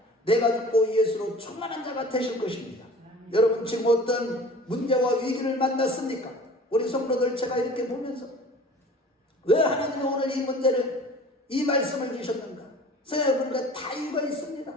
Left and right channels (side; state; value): both; normal; correlation 0.44